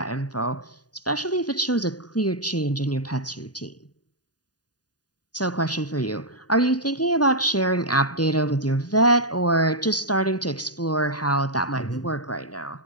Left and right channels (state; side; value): late; right; 0.68 ms